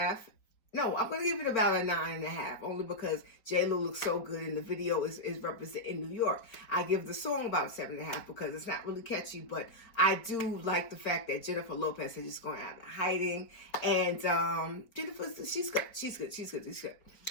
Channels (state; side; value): late; right; 4.5 ms